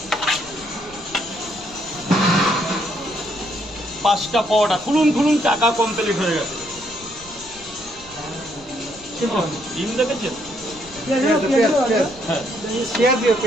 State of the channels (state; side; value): noise; left; rumble, 22 dB below the sound